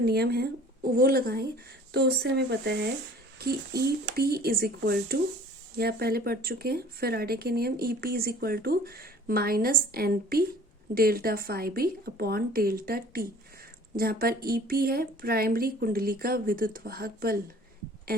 है वो लगाएं तो उससे हमें पता है कि EP इज इक्वल टू, या पहले पढ़ चुके हैं फैराडे के नियम, EP is equal to -NP delta phi-B upon delta T, जहाँ पर EP है प्राइमरी कुंडली का विद्युत वाहक बल,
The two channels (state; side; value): normal; both; correlation 0.50